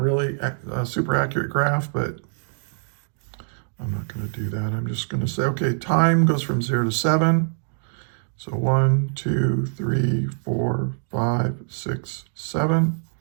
really super accurate graph. But I'm not going to do that. I'm just going to say, okay, time goes from 0 to 7. So 1, 2, 3, 4, 5, 6, 7.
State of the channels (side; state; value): left; silent; digital silence